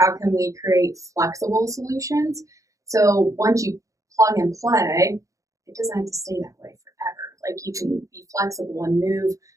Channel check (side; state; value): left; late; 0.16 ms